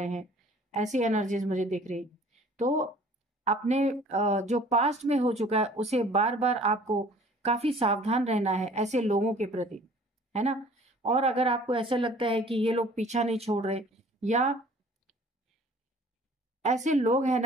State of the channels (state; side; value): normal; both; correlation 0.51